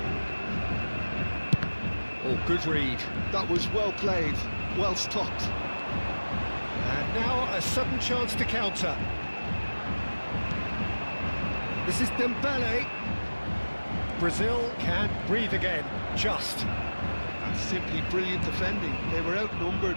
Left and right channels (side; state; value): both; inverted; correlation -1.00